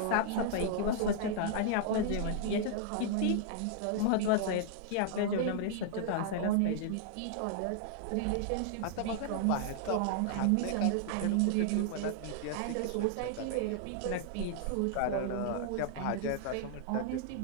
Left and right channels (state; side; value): different; both; correlation -0.01